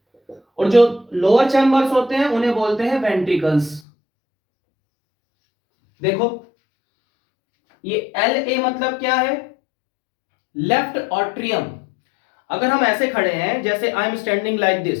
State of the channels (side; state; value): right; drops out; at 3.8 s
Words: और जो लोअर चैम्बर्स होते हैं उन्हें बोलते हैं वेंट्रिकल्स। देखो, ये LA मतलब क्या है? Left atrium. अगर हम ऐसे खड़े हैं, जैसे I am standing like